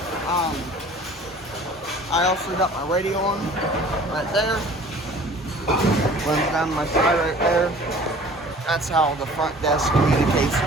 I also got my radio on right there. Runs down my side right there. That's how the front desk communicates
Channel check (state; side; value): normal; both; correlation 0.48